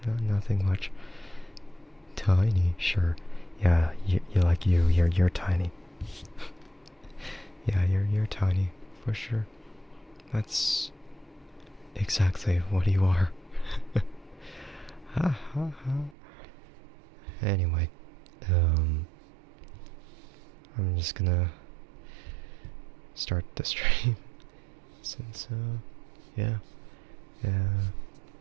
nothing much. Tiny, sure. Yeah, you're tiny. Yeah, you're tiny, for sure. That's exactly what you are. Ha ha ha. Anyway, I'm just gonna start the stream since, yeah,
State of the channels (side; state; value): left; drops out; at 16.2 s